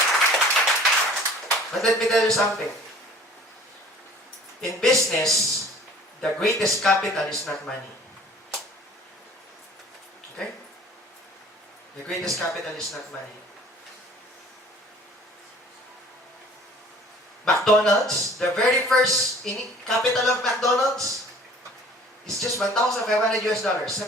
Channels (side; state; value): both; normal; correlation 0.50